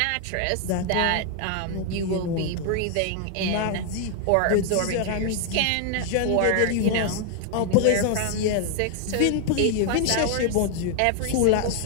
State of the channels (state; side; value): different; both; correlation 0.00